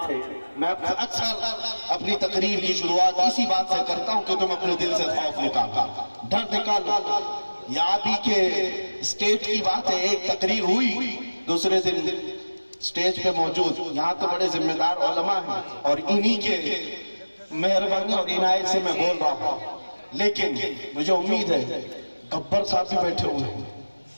تھے۔ میں اکثر اپنی تقریر کی شروعات اسی بات سے کرتا ہوں کہ تم اپنے دل سے خوف نکالو، ڈر نکالو۔ یہ آپ ہی کے اسٹیج کی بات ہے، ایک تقریر ہوئی، دوسرے دن اسٹیج پہ موجود یہاں تو بڑے ذمہ دار علماء ہیں اور انہی کے مہربانی اور عنایت سے میں بول رہا ہوں، لیکن مجھے امید ہے گبر صاحب بھی بیٹھے ہوئے ہیں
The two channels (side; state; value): both; inverted; correlation -1.00